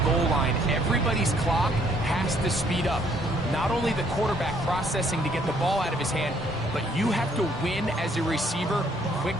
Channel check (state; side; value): normal; both; correlation 0.65